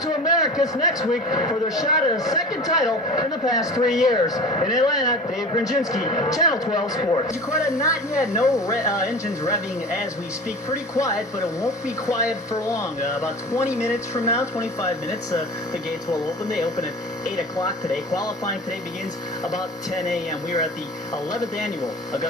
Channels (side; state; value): both; normal; correlation 0.36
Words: Americus next week for their shot at a second title in the past 3 years. In Atlanta, Dave Grendzynski, Channel 12 Sports. Jakarta, not yet. No engines revving as we speak. Pretty quiet, but it won't be quiet for long. About 20 minutes from now, 25 minutes, the gates will open. They open at 8 o'clock today. Qualifying today begins about 10 a.m. We are at the 11th annual